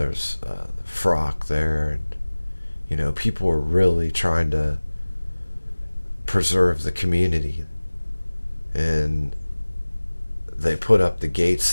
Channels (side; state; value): both; inverted; correlation -1.00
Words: Frock there, and people were really trying to preserve the community, and they put up the